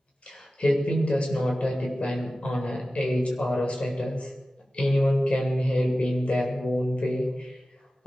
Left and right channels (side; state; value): both; normal; correlation 0.95